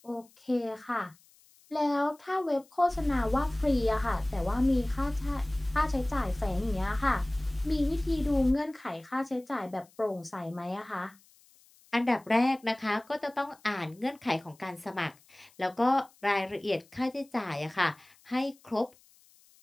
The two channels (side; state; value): left; noise; hiss, 29 dB below the sound